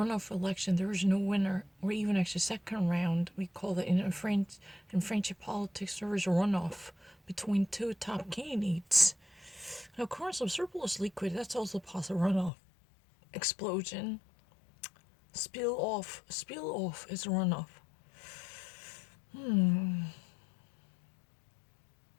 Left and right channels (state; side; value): drops out; right; at 12.5 s